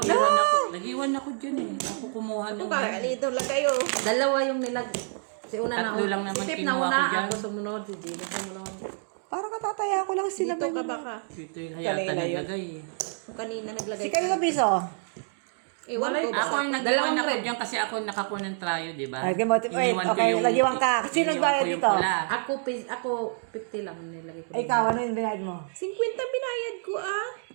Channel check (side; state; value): left; silent; 60 dB below the other